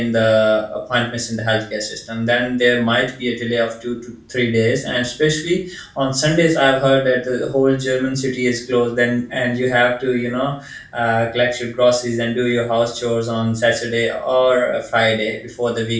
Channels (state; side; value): identical; both; correlation 1.00